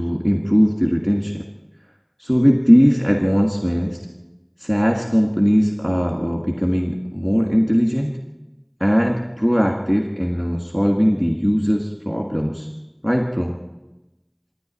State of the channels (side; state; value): both; identical; correlation 1.00